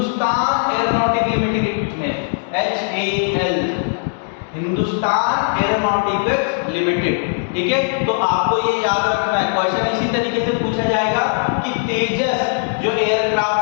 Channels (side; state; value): right; silent; digital silence